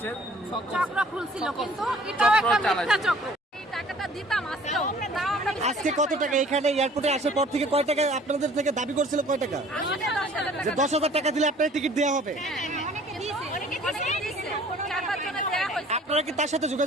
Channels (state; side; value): normal; both; correlation 0.52